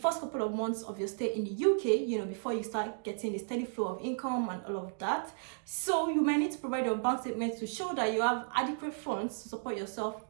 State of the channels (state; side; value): silent; left; digital silence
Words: couple of months of your stay in the UK, before you start getting a steady flow of income and all of that. So you might need to provide your bank statement to show that you have adequate funds to support yourself